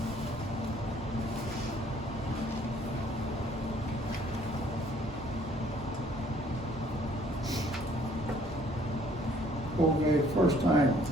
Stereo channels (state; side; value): normal; both; correlation 0.60